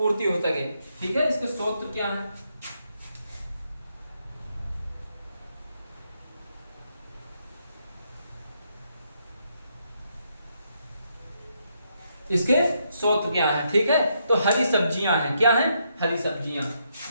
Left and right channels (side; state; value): both; inverted; correlation -0.77